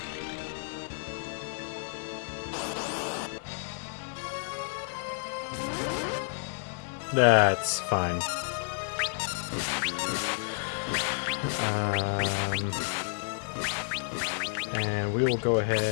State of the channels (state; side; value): silent; right; 57 dB below the other